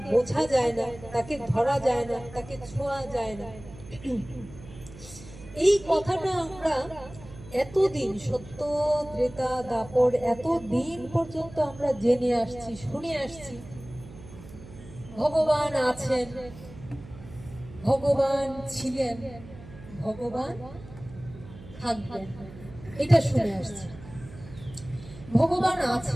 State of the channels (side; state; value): right; noise; hum, 17 dB below the sound